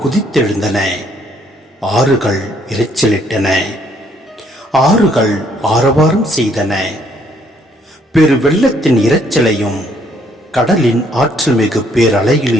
குதித்தெழுந்தன, ஆறுகள் இரைச்சலிட்டன, ஆறுகள் ஆரவாரம் செய்தன. பெரு வெள்ளத்தின் இரைச்சலையும் கடலின் ஆற்றல் மிகு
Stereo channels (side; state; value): both; normal; correlation 0.67